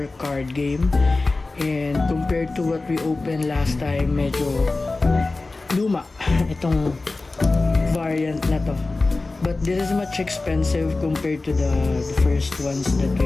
card game. And compared to what we opened last time, medyo luma itong variant na to. But this is much expensive compared to the first ones that we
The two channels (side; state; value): right; quieter; 3.4 dB